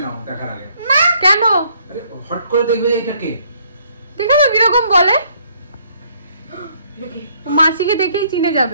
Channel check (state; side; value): inverted; both; correlation -0.66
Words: নাও দেখার আগে। কেন? হট করে দেখবে এটা কে, দেখো তো কিরকম বলে, মাসিকে দেখেই চিনে